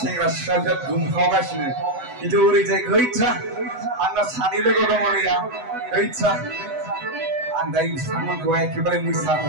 सिख्लाफोरा दुमखावगासिनो खिन्थु ओरैजाय गैथ्रा आंना सानै लोगो दङ नैया गैथ्रा आं दायो बिथांमोनखौ एखेबारे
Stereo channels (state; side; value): late; left; 8.0 ms